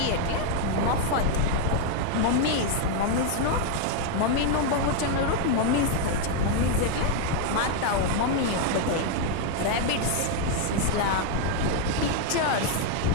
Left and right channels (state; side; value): different; both; correlation 0.00